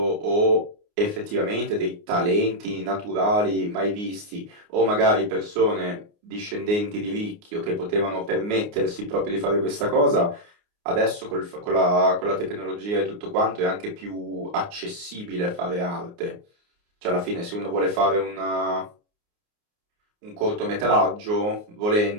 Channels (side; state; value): left; late; 29 ms